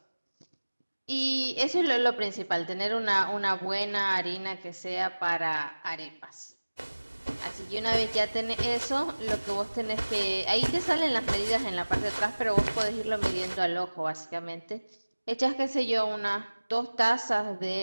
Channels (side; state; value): both; inverted; correlation -1.00